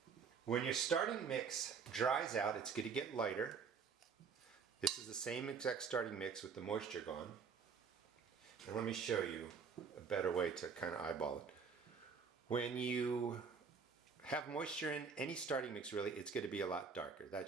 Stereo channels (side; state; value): left; quieter; 5.9 dB